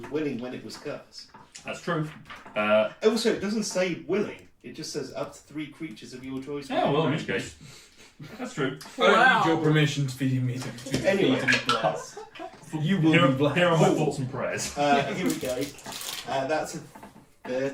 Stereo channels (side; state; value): both; identical; correlation 1.00